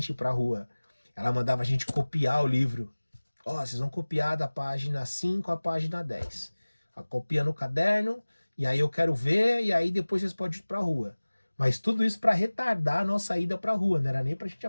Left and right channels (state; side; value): inverted; both; correlation -1.00